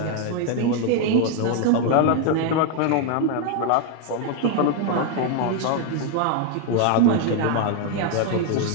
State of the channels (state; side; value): different; both; correlation 0.01